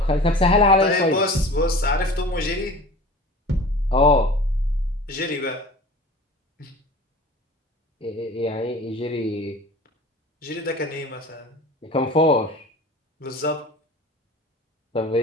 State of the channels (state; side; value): normal; both; correlation 0.40